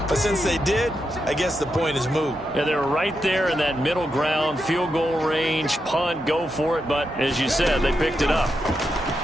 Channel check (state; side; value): normal; both; correlation 0.85